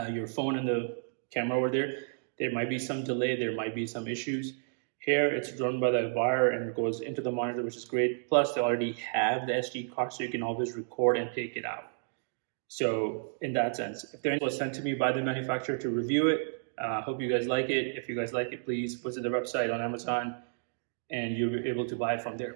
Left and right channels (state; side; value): silent; left; digital silence